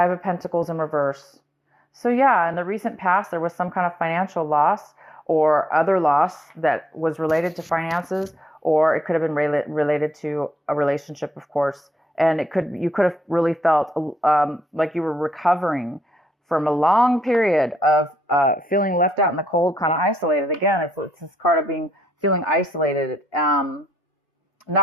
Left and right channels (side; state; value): both; normal; correlation 0.76